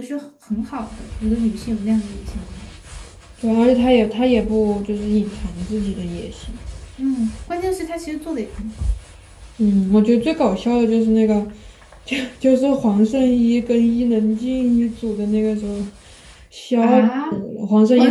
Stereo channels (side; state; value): both; identical; correlation 1.00